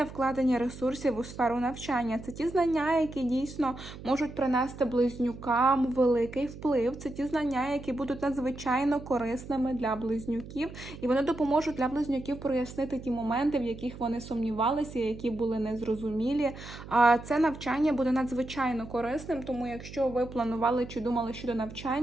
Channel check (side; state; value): right; noise; hum, 14 dB below the sound